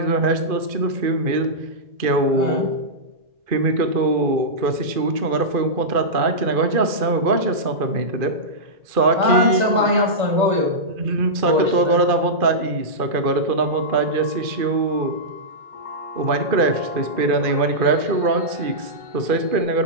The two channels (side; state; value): left; late; 2.4 ms